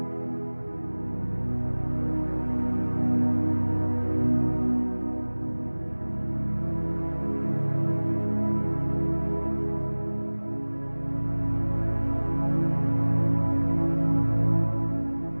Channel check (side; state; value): both; inverted; correlation -1.00